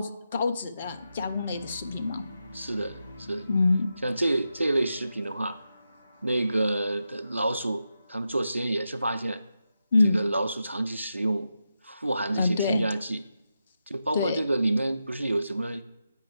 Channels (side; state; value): both; inverted; correlation -0.88